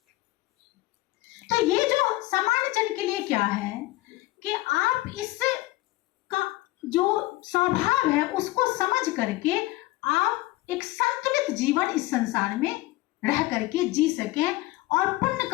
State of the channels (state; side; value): quieter; right; 19.0 dB